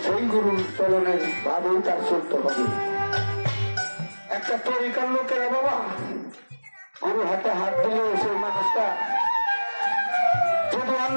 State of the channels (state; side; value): inverted; both; correlation -1.00